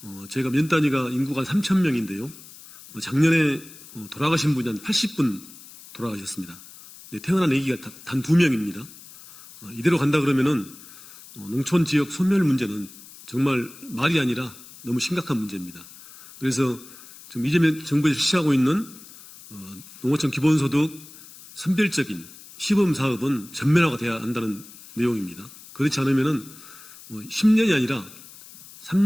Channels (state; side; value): noise; left; hiss, 19 dB below the sound